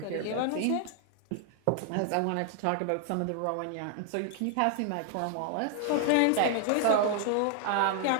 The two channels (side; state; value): both; different; correlation 0.00